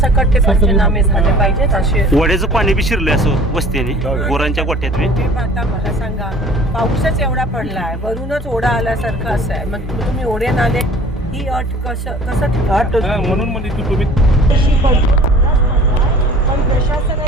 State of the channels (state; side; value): normal; both; correlation 0.47